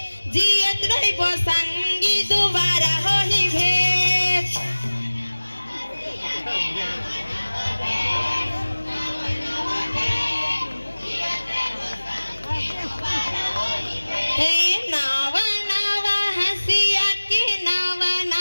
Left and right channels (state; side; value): inverted; both; correlation -1.00